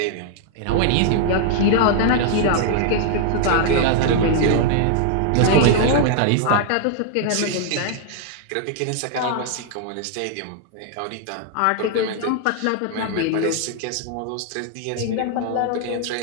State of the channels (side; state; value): both; different; correlation 0.00